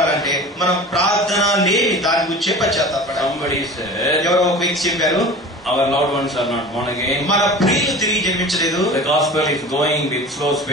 మనం ప్రార్థన లేని దాని గురించే పశ్చాత్తాపడాలి. Somebody said, ఎవరో ఒక వ్యక్తి చెప్పారు, our loved ones are not born again. మన ప్రియులు తిరిగి జన్మించలేదు. The gospel is going with slow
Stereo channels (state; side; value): normal; both; correlation 0.37